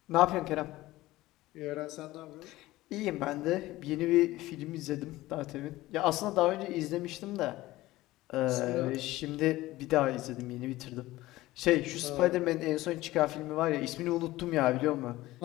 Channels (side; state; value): right; quieter; 17.5 dB